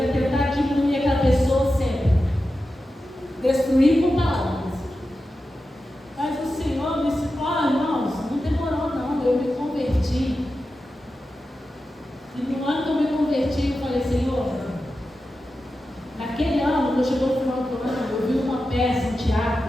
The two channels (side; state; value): both; normal; correlation 0.91